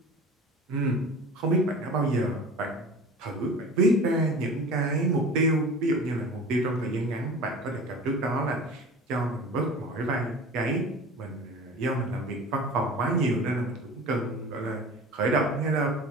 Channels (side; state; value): both; normal; correlation 0.38